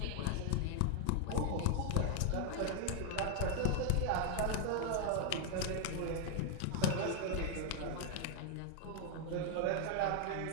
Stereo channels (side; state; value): both; different; correlation 0.00